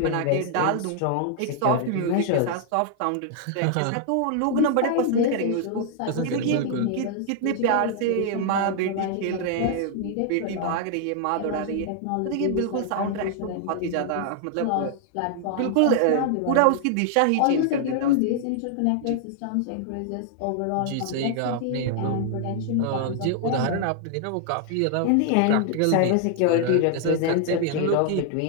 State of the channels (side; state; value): both; different; correlation 0.00